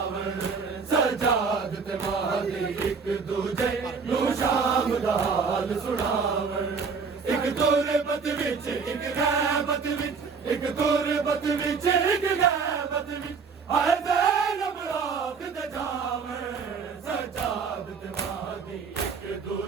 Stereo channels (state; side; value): quieter; left; 5.4 dB